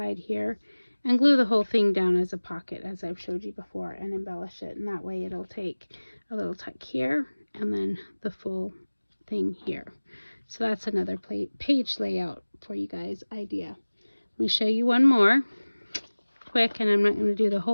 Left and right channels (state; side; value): inverted; both; correlation -1.00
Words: here and glue the whole thing down as a pocket as I've showed you before and embellish it. And that way it'll take a little tuck here and then the full thing here. So that's another page layout for you guys idea. Let me show you one more quick, and I'm not going to do the